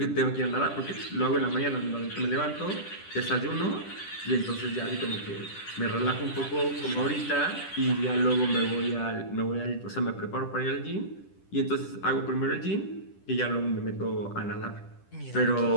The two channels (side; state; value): right; late; 10 ms